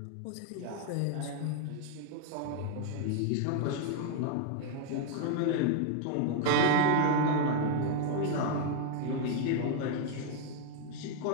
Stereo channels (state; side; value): different; both; correlation 0.00